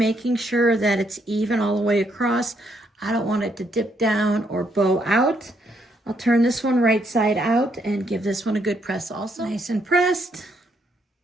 sure that it's even all the way across. I don't want it to dip down or bow out. I'll turn this one right side out and give this one a good press also. Nice and pressed.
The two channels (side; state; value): both; normal; correlation 0.73